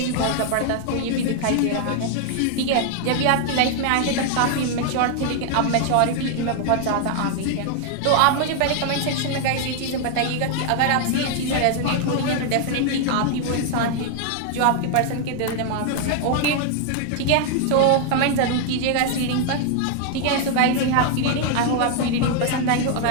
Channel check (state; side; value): different; both; correlation 0.00